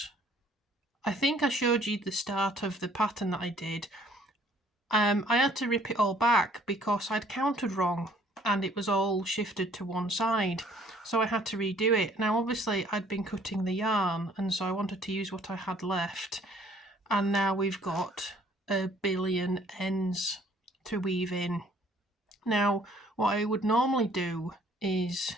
I think I showed you the start of the pattern that I did. I had to rip it all back because I'd counted wrong and it was all shifted to one side, so I had to redo it. Now obviously I'd been cutting the yarn, and so I wanted to use what I had left, and now we've got a billion ends to weave in. Now what I would normally do is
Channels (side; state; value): both; normal; correlation 0.59